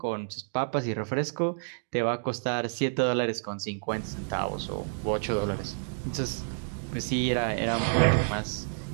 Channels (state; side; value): silent; left; digital silence